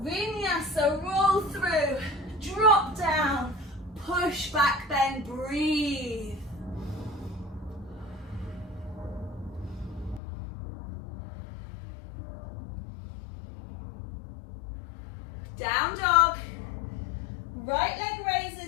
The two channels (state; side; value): drops out; right; at 10.2 s